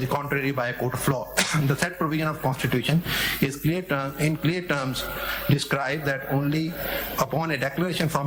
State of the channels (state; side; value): identical; both; correlation 1.00